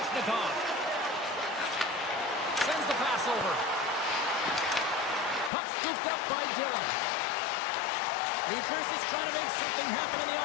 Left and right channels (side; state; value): right; drops out; at 5.5 s